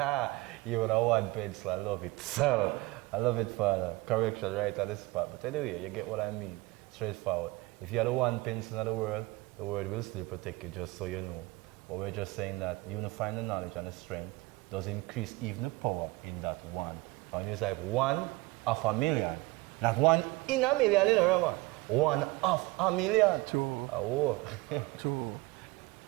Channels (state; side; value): quieter; left; 21.7 dB